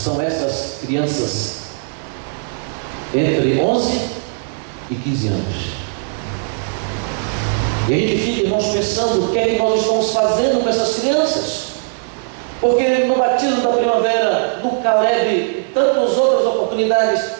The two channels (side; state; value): left; silent; 56 dB below the other